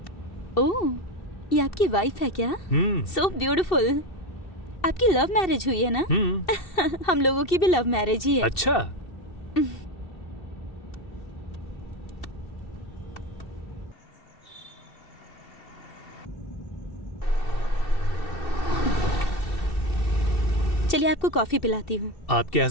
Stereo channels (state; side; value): late; right; 2.7 ms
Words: ओह, ये आपकी वाइफ है क्या? So beautiful. आपकी लव मैरिज हुई है ना? हम लोगों की भी लव मैरिज ही है। अच्छा। चलिए आपको कॉफी पिलाती हूँ। आपके